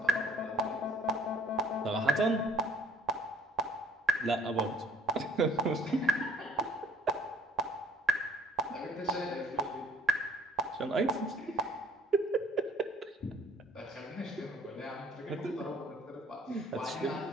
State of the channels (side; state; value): both; normal; correlation 0.59